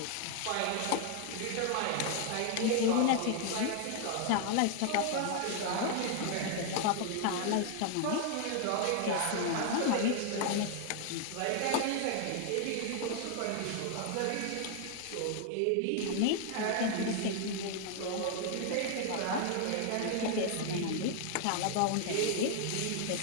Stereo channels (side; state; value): both; different; correlation 0.00